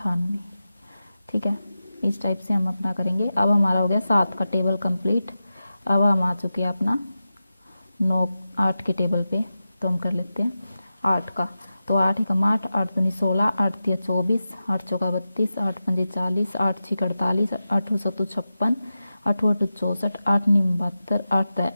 ठीक है। इस टाइप से हम अपना करेंगे। अब हमारा हो गया 7 का टेबल कंप्लीट। अब हम आ चुके हैं अपना 8 के टेबल पे। तो हम कर लेते हैं 8 का। तो 8 एकम 8, 8 दूनी 16, 8 तिया 24, 8 चौका 32, 8 पंजे 40, 8 छीक 48, 8 सत्तू 56, 8 अठू 64, 8 नीम 72, 8 दया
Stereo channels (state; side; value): inverted; both; correlation -0.92